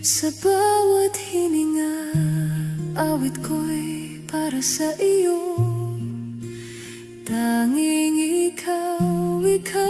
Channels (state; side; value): identical; both; correlation 1.00